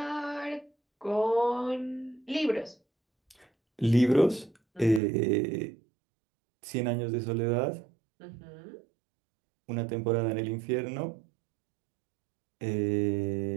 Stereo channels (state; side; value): drops out; left; at 5.0 s